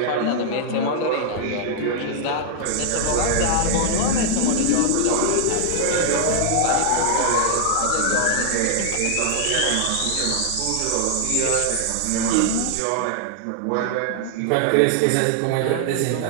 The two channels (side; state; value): both; different; correlation 0.00